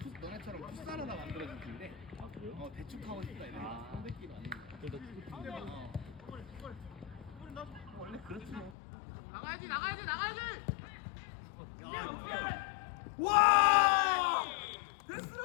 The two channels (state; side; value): drops out; right; at 8.8 s